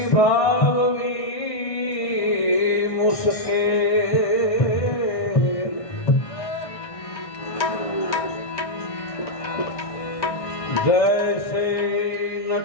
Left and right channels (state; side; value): late; right; 1.6 ms